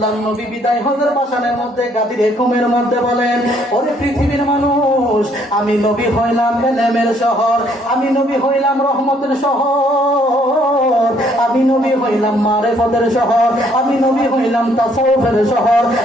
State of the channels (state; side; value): normal; both; correlation 0.66